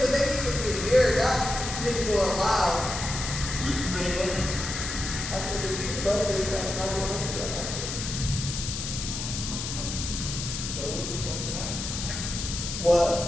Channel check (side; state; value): left; noise; hiss, 5 dB below the sound